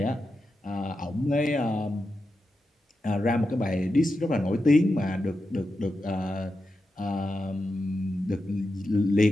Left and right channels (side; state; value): both; normal; correlation 0.89